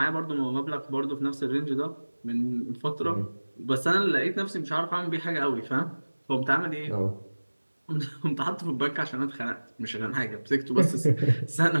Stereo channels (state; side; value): inverted; both; correlation -1.00